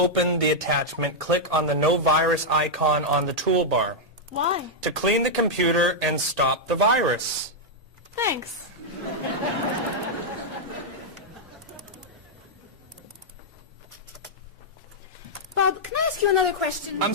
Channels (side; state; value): both; normal; correlation -0.05